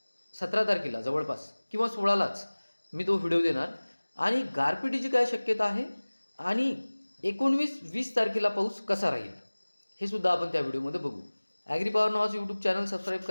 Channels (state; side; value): inverted; both; correlation -1.00